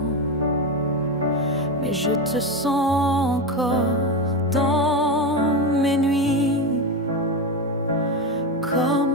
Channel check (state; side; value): normal; both; correlation 0.16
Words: Mais je te sens encore dans mes nuits,